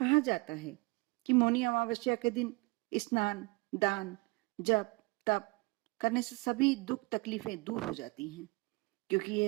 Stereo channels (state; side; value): quieter; left; 26.5 dB